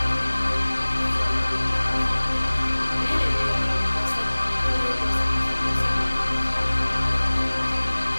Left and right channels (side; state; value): both; inverted; correlation -1.00